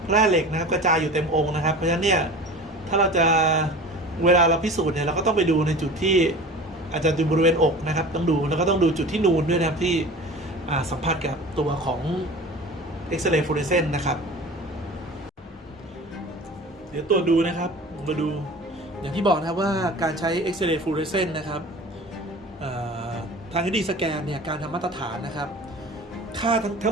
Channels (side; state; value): both; normal; correlation 0.38